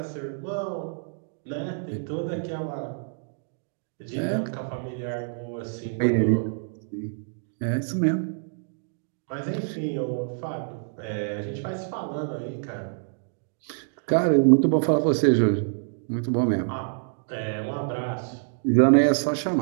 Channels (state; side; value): silent; left; digital silence